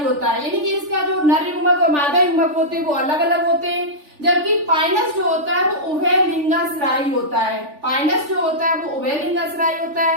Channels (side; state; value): left; late; 3.4 ms